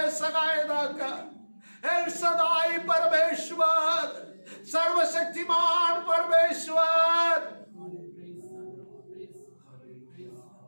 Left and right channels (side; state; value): both; inverted; correlation -1.00